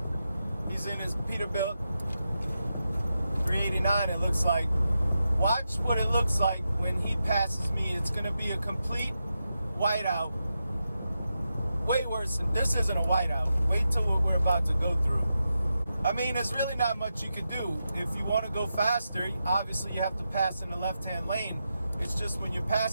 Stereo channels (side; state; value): both; inverted; correlation -0.88